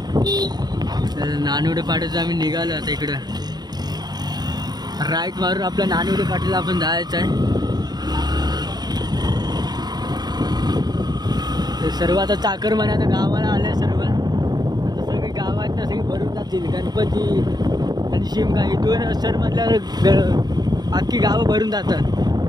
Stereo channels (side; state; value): left; late; 0.20 ms